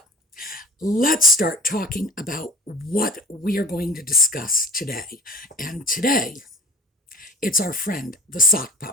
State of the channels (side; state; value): both; normal; correlation 0.41